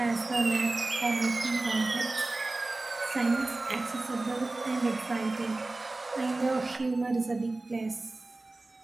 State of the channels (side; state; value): left; quieter; 3.1 dB